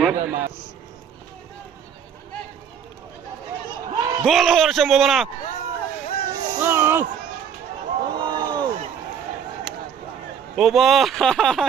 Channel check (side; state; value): left; quieter; 7.8 dB